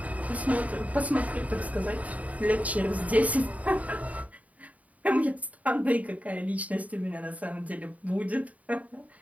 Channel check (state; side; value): late; left; 0.070 ms